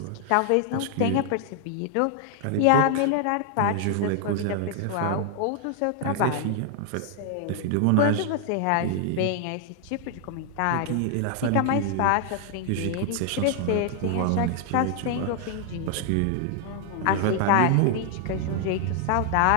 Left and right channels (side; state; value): both; different; correlation 0.00